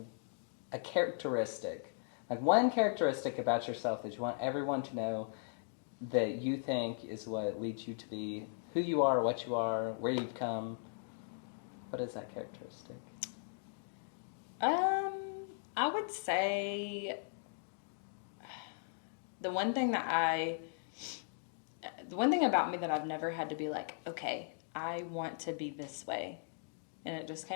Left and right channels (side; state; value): right; silent; digital silence